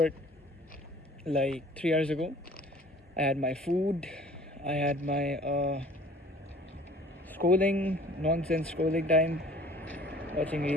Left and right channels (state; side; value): normal; both; correlation 0.51